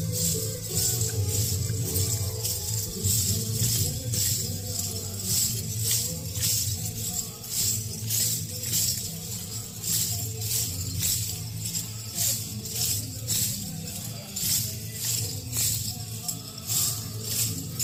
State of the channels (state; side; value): identical; both; correlation 1.00